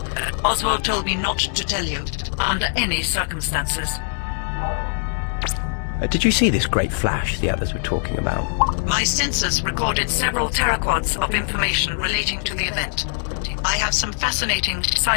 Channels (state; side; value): silent; right; digital silence